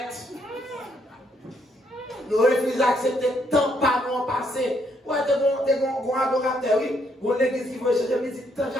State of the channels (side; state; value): both; normal; correlation 0.73